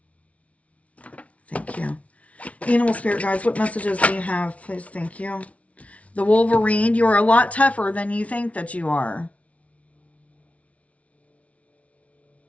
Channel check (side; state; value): right; late; 0.065 ms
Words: Thank you. Animal spirit guides, what messages do you have? Please, thank you. The Wolverine, you are a lot tougher than you think that you are.